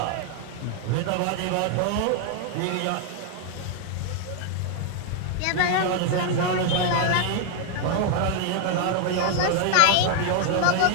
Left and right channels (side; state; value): both; different; correlation 0.00